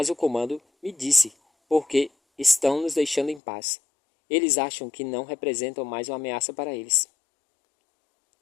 porque estão nos deixando em paz. Eles acham que não representam mais uma ameaça para eles.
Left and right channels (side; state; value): right; drops out; at 3.4 s